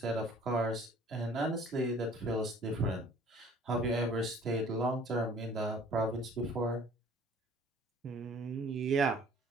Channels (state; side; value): normal; both; correlation 0.53